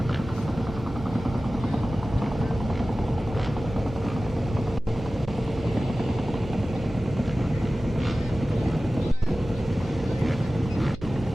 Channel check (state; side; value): noise; right; hum, 13 dB below the sound